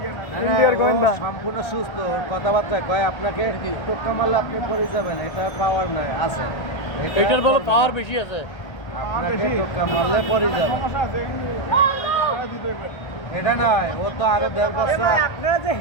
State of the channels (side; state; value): right; late; 1.3 ms